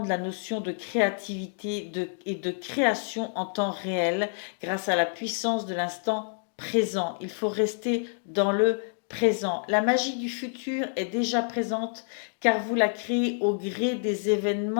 la notion de créativité et de création en temps réel grâce à la puissance de l'instant présent. Il faut rester dans le présent. La magie du futur est déjà présente car vous la créez au gré des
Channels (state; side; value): silent; right; digital silence